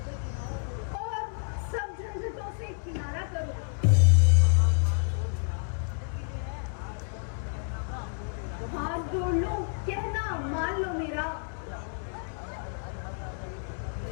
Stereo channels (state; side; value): silent; right; 58 dB below the other